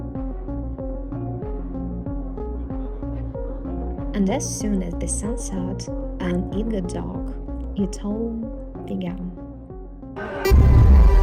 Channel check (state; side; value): identical; both; correlation 1.00